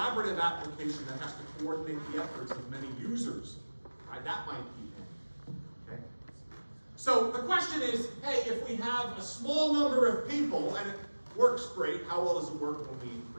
application that has to coordinate the efforts of many users, right? That might be n, okay? So the question is, hey, if we have a small number of people and it works great, how well does it work when we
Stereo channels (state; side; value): inverted; both; correlation -1.00